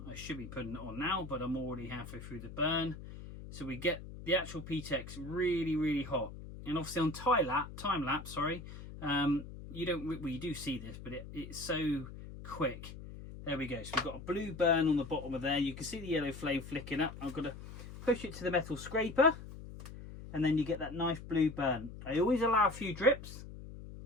I should be putting it on now, but I'm already halfway through the burn. So we get the actual PTEX really, really hot. And obviously on time lapse, sorry, you don't, well, you do see this, but it's so quick. There we go. So we've got a blue burn on the bottom of there. You can see the yellow flame flicking up. I'm going to push it to the metal scraper, and then you get that nice blue burn. I always allow a few drips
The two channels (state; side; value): noise; left; hum, 12 dB below the sound